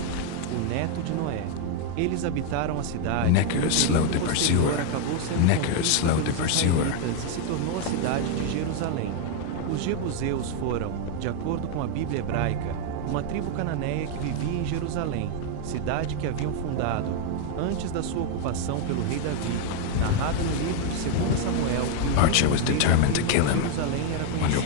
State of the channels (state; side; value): different; both; correlation 0.00